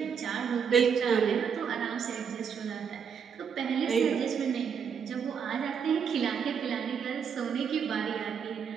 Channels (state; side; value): quieter; left; 6.9 dB